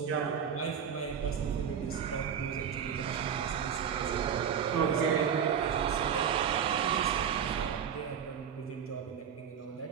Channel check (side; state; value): left; quieter; 7.8 dB